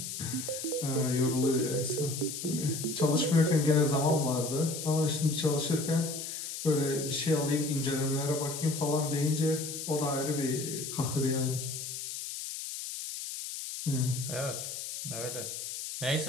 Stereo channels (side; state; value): left; noise; hiss, 7 dB below the sound